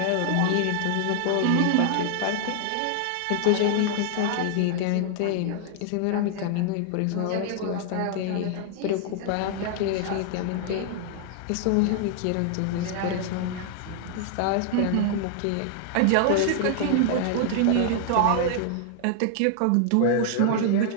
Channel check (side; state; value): both; different; correlation 0.00